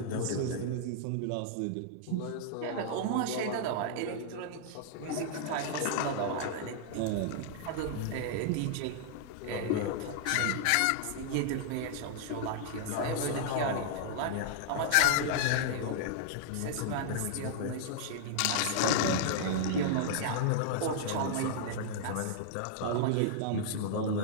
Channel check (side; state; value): both; different; correlation -0.01